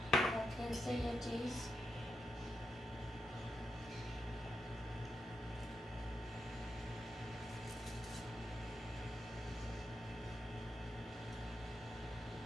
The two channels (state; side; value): normal; both; correlation 0.85